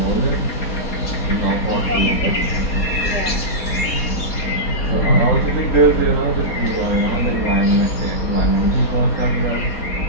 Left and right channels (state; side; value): late; right; 4.2 ms